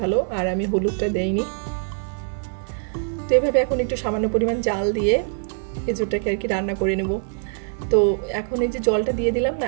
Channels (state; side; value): silent; left; 60 dB below the other